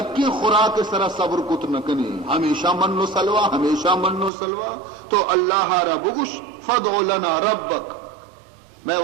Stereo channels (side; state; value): left; drops out; at 4.3 s